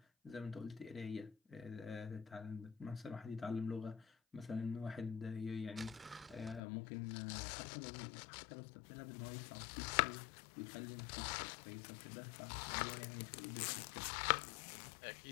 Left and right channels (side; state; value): right; drops out; at 6.6 s